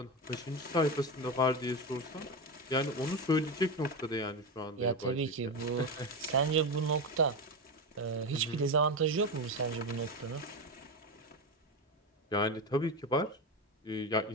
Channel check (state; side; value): normal; both; correlation 0.17